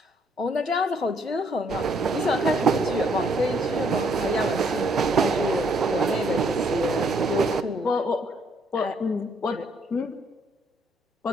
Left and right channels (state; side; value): normal; both; correlation 0.68